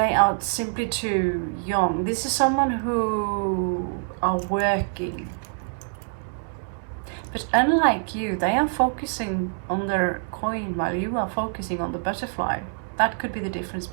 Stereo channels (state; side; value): silent; left; 61 dB below the other